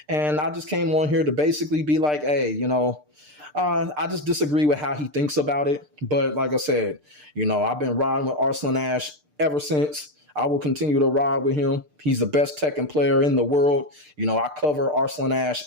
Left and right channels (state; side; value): late; left; 6.7 ms